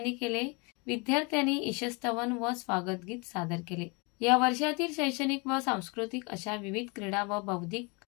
केले। विद्यार्थ्यांनी ईशस्तवन व स्वागत गीत सादर केले। या वर्षातील शैक्षणिक व सांस्कृतिक अशा विविध क्रीडा व बौद्धिक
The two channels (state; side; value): quieter; right; 29.6 dB